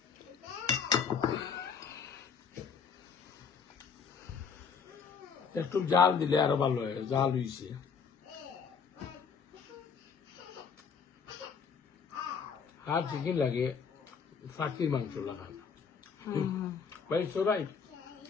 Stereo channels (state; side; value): quieter; right; 6.2 dB